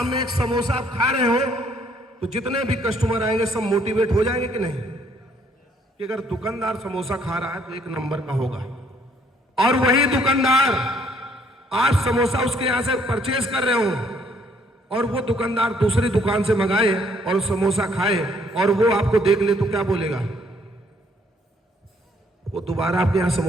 एक समोसा आप खा रहे हो, तो जितने भी कस्टमर आएंगे सब मोटिवेट हो जाएंगे कि नहीं, कि अगर दुकानदार समोसा खा रहा है तो एक नंबर का होगा। और वही दुकानदार, आप समोसा उसके यहां से परचेज कर रहे हो और वो दुकानदार दूसरी दुकान से मंगाए और समोसा खाए और वो आपको देख ले, तो क्या बोलेगा, वो दोबारा आपके यहां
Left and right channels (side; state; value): both; normal; correlation 0.66